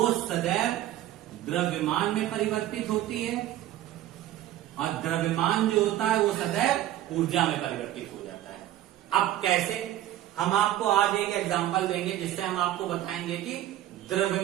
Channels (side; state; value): left; quieter; 13.4 dB